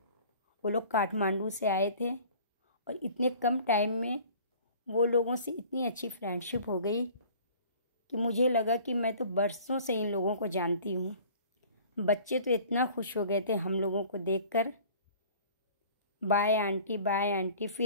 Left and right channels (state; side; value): inverted; both; correlation -0.48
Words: वो लोग काठमांडू से आए थे और इतने कम टाइम में वो लोगों से इतनी अच्छी फ्रेंडशिप हो गई कि मुझे लगा कि मैं तो बरसों से इन लोगों को जानती हूँ। बच्चे तो इतना खुश हो गए थे हम लोगों को देखकर। बाय आंटी,